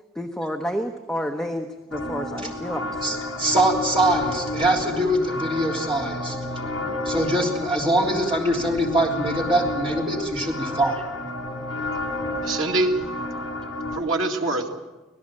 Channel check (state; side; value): normal; both; correlation 0.52